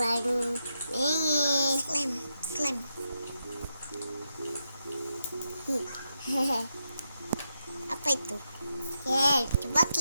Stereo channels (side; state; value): both; inverted; correlation -0.84